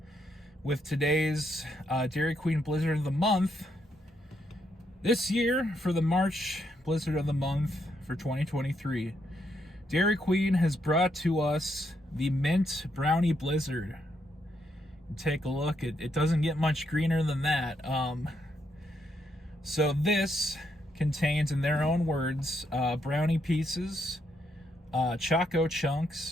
with today's Dairy Queen Blizzard of the Month. This year, for the March Blizzard of the Month for 2023, Dairy Queen has brought to us the Mint Brownie Blizzard. Take a look. It doesn't get much greener than that. So this contains, in their own words, brownie pieces, choco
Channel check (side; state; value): both; normal; correlation 0.77